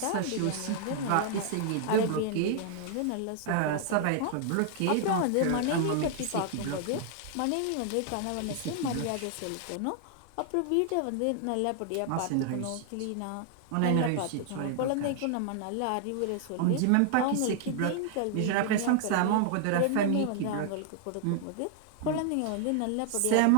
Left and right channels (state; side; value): different; both; correlation 0.00